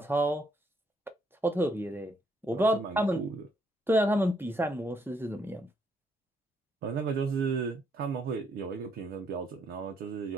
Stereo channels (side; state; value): both; normal; correlation 0.73